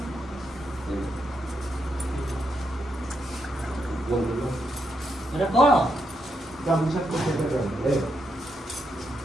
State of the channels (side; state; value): both; normal; correlation 0.81